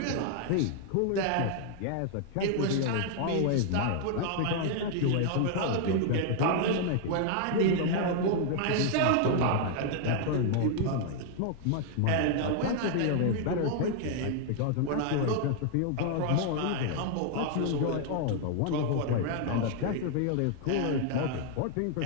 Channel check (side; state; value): both; different; correlation 0.00